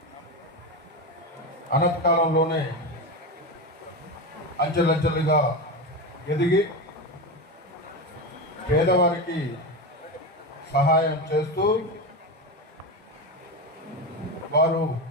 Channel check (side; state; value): both; normal; correlation 0.18